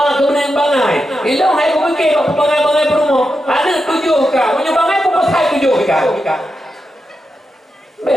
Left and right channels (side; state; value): both; normal; correlation 0.88